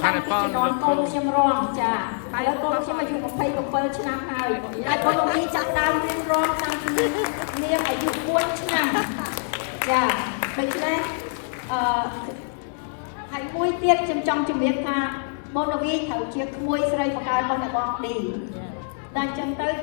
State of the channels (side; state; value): right; silent; 59 dB below the other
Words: ខាងនេះផងលោកគ្រូខ្ញុំរងចាហើយលោកគ្រូខ្ញុំអាយុ27ឆ្នាំហើយហើយ Bonavi ចាប់ដើមរៀនរងឆ្នាំ នាងអាយុ1ឆ្នាំចាដូច្នេះហើយមួយទៀតខ្ញុំចង់ជំរាបថាបងរវីត្រូវជាក្មួយស្រីបកើរបស់អ្នកបងឌីតែអញ្ចឹងទៅគ